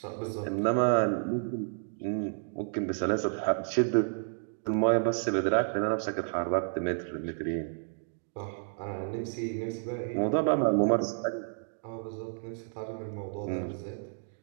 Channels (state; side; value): silent; left; digital silence